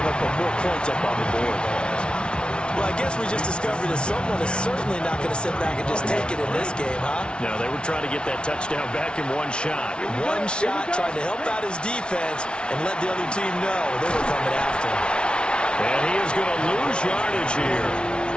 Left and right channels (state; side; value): late; right; 0.057 ms